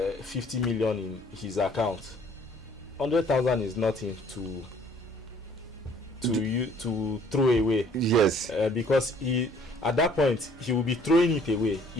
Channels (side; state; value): both; normal; correlation 0.58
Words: million in his account, 100,000 is nothing to throw away. Yes. Because he, at that point, he will be throwing it away.